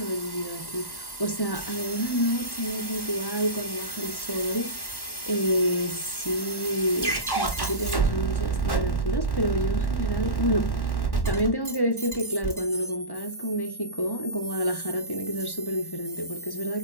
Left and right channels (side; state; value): right; late; 1.1 ms